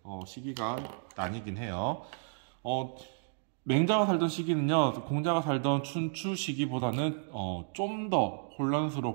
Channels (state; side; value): silent; left; digital silence